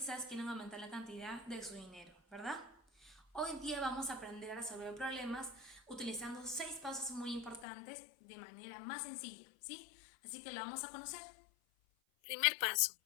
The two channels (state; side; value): drops out; right; at 7.7 s